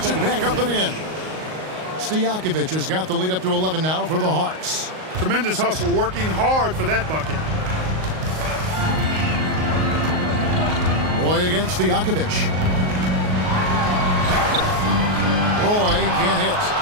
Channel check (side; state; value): left; late; 38 ms